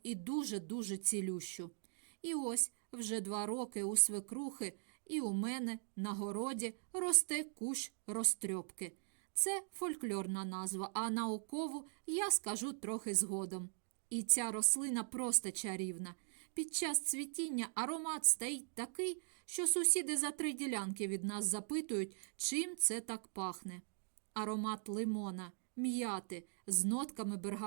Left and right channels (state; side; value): silent; left; digital silence